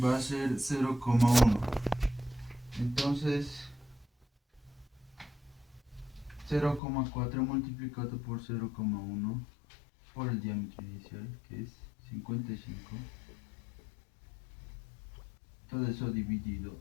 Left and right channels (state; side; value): drops out; right; at 6.8 s